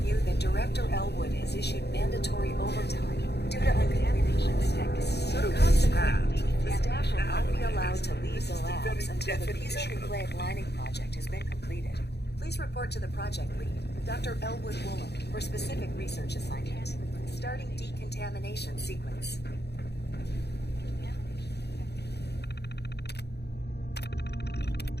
you that Director Elwood has issued mandatory overtime due to uncontamination checks. Consequently, the staff will not be allowed to leave the labs until the piezonucleic lining project has been completed. Please report to the project lead, Dr. Elwood Woolham, for specific research assignment. Starting decontamination sequence.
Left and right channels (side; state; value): right; late; 0.48 ms